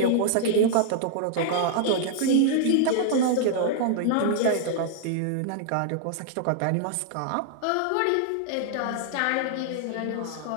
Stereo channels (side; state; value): both; different; correlation -0.01